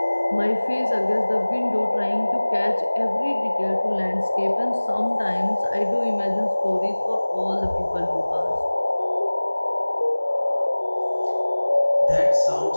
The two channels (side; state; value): both; inverted; correlation -1.00